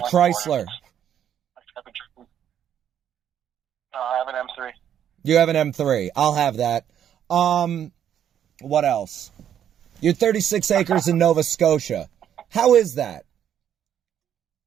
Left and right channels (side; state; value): left; quieter; 9.7 dB